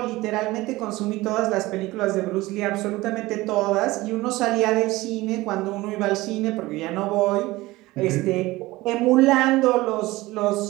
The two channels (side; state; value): left; quieter; 19.4 dB